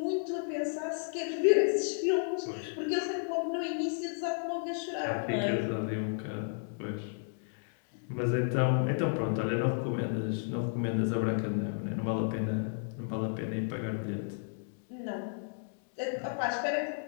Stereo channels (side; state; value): right; silent; 56 dB below the other